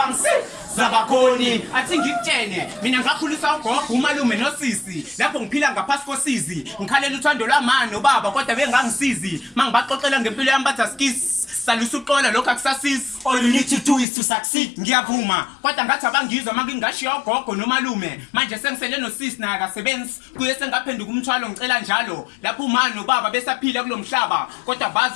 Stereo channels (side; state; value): right; drops out; at 14.1 s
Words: bakhoni. Athi ngikutshene mina ngakhulisa ugogo umalume nosisi lapho ngiphila ngaphasi kosizi ngikhalela uthando lwamani ubaba kodwa bengangisizi mangibaxoxela ngempilo yami bathi asikisi salusa uqola lokho akusasisi. All you need to do is to succeed. Ngiyavuma kodwa ngathi abangizwa mangingashiya ugogo nomalume manje sengisele nosisi naye akasebenzi kuye sengaphenduka umthwalo ngicela njalo lapho umani nobaba besaphila kulomhlaba kodwa bazi